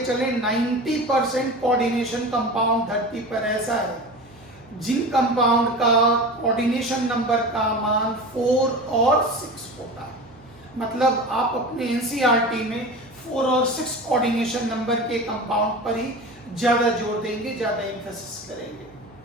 90% कोऑर्डिनेशन कंपाउंड धरती पर ऐसा है जिन कंपाउंड का कोऑर्डिनेशन नंबर का मान 4 और 6 होता है। मतलब आप अपने एनसीईआरटी में 4 और 6 कोऑर्डिनेशन नंबर के कंपाउंड पर ही ज्यादा जोर देंगे, ज्यादा एम्फेसिस करेंगे।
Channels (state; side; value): noise; right; hum, 27 dB below the sound